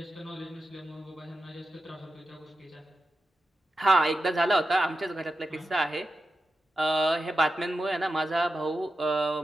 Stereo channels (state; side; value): normal; both; correlation 0.91